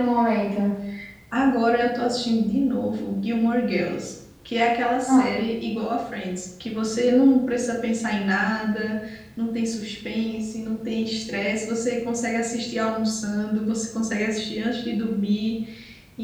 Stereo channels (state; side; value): identical; both; correlation 1.00